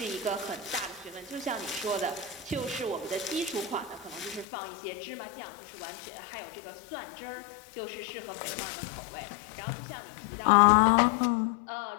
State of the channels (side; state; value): right; drops out; at 4.5 s